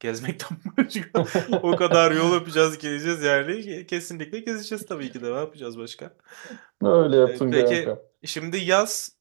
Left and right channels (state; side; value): silent; left; 63 dB below the other